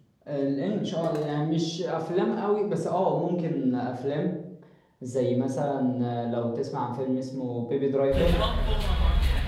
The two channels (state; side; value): identical; both; correlation 1.00